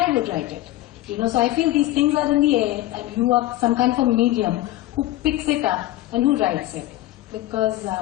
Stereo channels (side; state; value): right; quieter; 15.7 dB